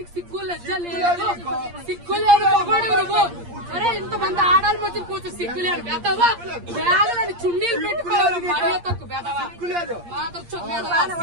సిగ్గు లజ్జ లేదు. సిగ్గు లేదు మగోడు నువ్వు. అరే ఇంతమంది ఆడాలి మధ్య కూర్చో సిగ్గు లేదు. బెదవా బ్యాగులని చున్నీలు పెట్టుకోవాలి. మర్యాద తక్కువ బెదవా మాత్రం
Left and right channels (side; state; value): left; late; 8.6 ms